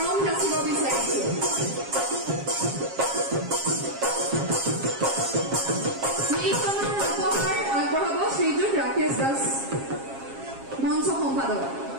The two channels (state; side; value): late; left; 7.4 ms